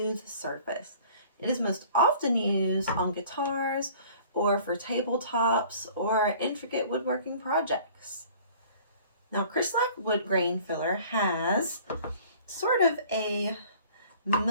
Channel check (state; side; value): inverted; both; correlation -0.50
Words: surface. It is most often used on guitars or for tabletops or intricate woodworking projects. Now, CrystaLac Wood Grain Filler has sort of a